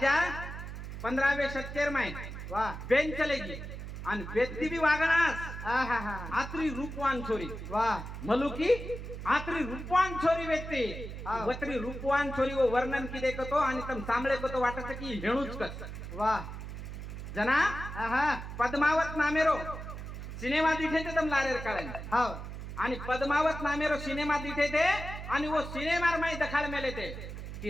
15 સત્તર માં વાહ બેન ચલે ગઈ आणि व्यक्ती बी वागणास आहा आत्री रूपवान छोरी वाह मलुकी आत्री रूपवान छोरी व्यक्ती हा. वत्री रूपवान छोरी वो वर्णन किदे कतो आणि तम सांभळे कतो वाटत की हेणूच कस वाह जना आहा पद्मावत नामेरो सिनेमा दिठे ते तम लारेर काढेन हाव आणि पद्मावत नामेरो सिनेमा दिठे ते आणि वो सिनेमार माई दखाड मेले ते की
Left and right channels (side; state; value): right; noise; hum, 9 dB below the sound